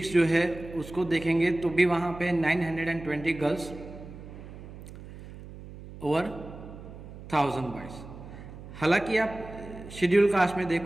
जो है उसको देखेंगे तो भी वहाँ पे 920 गर्ल्स और 1000 बॉयज़। हालांकि आप शेड्यूल कास्ट में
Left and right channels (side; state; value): right; noise; hum, 14 dB below the sound